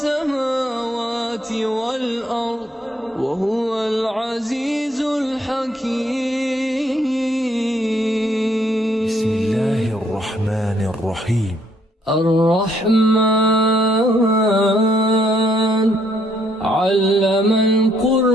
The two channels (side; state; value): both; normal; correlation 0.69